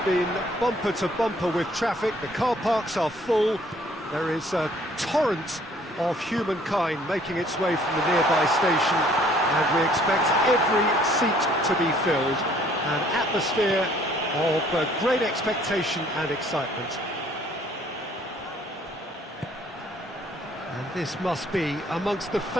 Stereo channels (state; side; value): normal; both; correlation 0.60